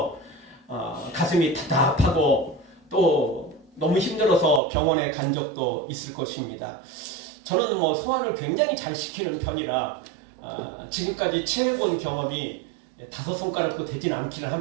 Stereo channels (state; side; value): drops out; left; at 4.6 s